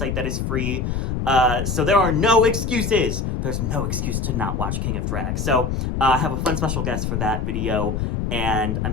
that is free. So there are no excuses. There's no excuse to not watch King of Drag. So I have a fun special guest for that video, and I'm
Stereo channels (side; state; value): left; noise; rumble, 1 dB below the sound